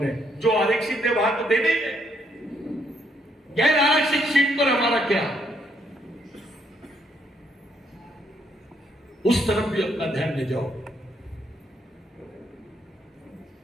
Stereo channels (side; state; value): both; normal; correlation 0.73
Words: है। जो आरक्षित है वहां तो देने ही है, गैर आरक्षित सीट पर हमारा क्या, उस तरफ भी अपना ध्यान ले जाओ।